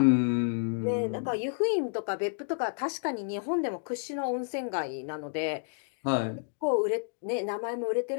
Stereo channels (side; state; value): right; silent; digital silence